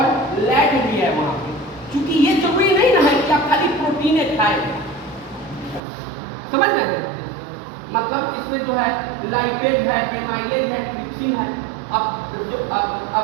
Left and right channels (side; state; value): left; drops out; at 5.8 s